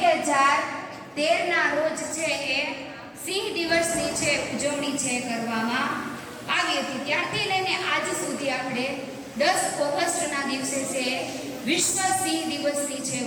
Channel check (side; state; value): both; identical; correlation 1.00